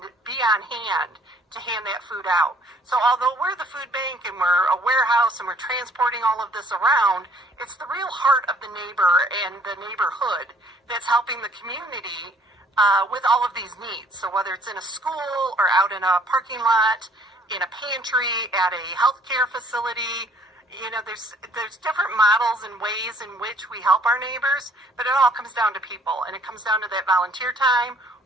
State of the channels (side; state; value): both; normal; correlation 0.59